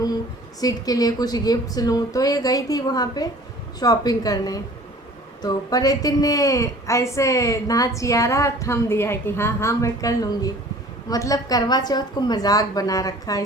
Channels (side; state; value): both; normal; correlation 0.48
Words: सीट के लिए कुछ गिफ्ट्स लूँ, तो ये गई थी वहाँ पे शॉपिंग करने। तो परेतिन ने ऐसे नाचियारा थम दिया है कि हाँ हाँ मैं कर लूँगी। मतलब करवा चौथ को मजाक बना रखा है